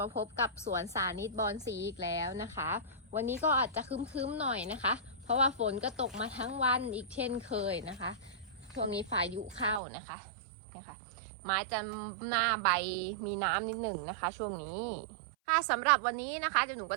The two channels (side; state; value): left; drops out; at 9.8 s